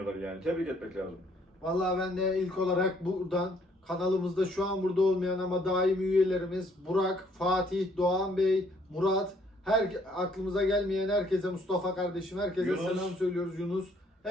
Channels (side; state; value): both; normal; correlation 0.65